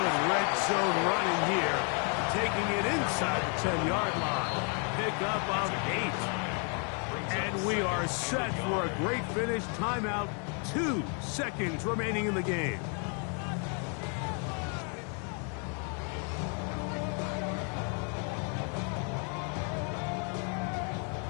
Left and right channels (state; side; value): quieter; right; 39.4 dB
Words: red zone running here. Taking it inside the 10-yard line. Pickup of 8. And we are set for a great finish. Timeout. 2 seconds remaining in the game.